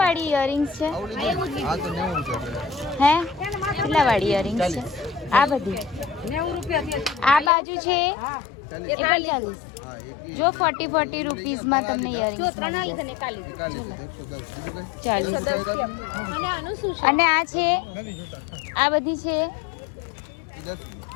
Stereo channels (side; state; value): right; drops out; at 7.5 s